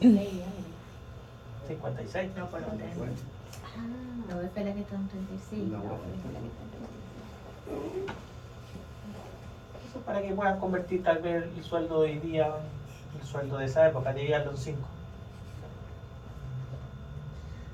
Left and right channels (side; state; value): both; identical; correlation 1.00